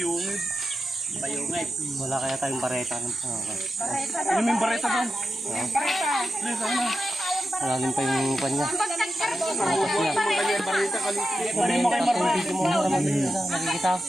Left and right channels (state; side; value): normal; both; correlation 0.90